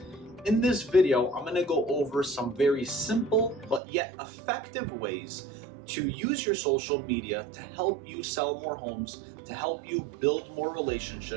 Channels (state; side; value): drops out; left; at 3.8 s